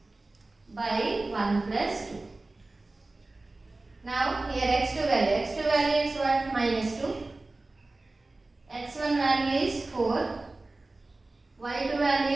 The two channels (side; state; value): left; quieter; 3.1 dB